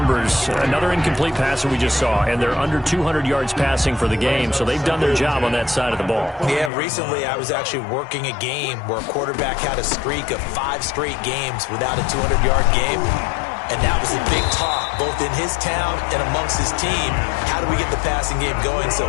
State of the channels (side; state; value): right; drops out; at 6.7 s